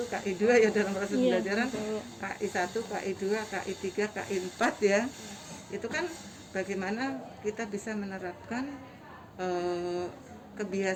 KI 2 ya dalam proses pembelajaran, KI 1, KI 2, KI 3, KI 4 ya. Itu kan bagaimana kita bisa menerapkan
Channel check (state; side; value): identical; both; correlation 1.00